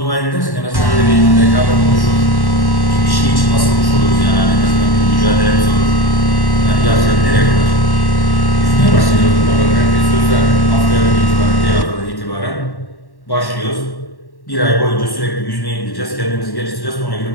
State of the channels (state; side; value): late; right; 1.1 ms